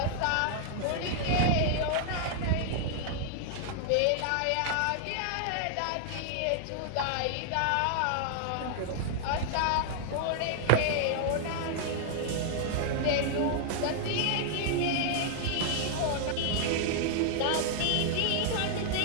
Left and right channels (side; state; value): both; different; correlation -0.01